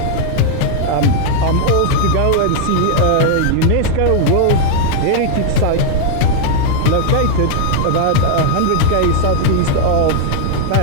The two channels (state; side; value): different; both; correlation 0.00